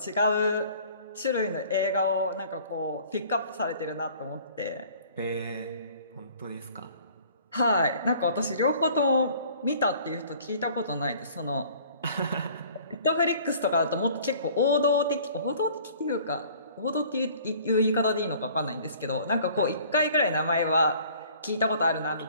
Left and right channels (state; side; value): inverted; both; correlation -0.52